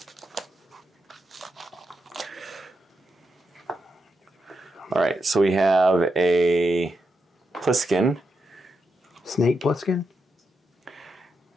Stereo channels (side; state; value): both; normal; correlation 0.85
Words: All right, so we have a Pliskin. Snake Pliskin?